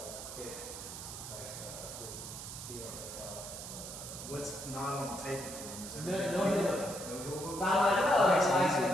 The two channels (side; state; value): right; noise; hiss, 9 dB below the sound